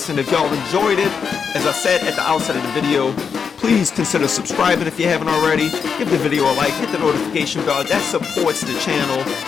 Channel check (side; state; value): right; quieter; 6.3 dB